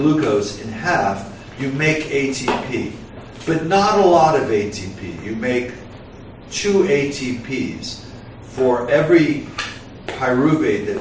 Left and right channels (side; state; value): both; identical; correlation 1.00